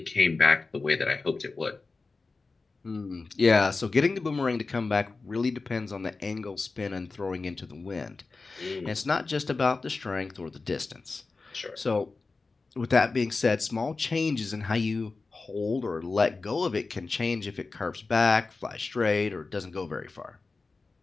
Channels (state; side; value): quieter; right; 3.9 dB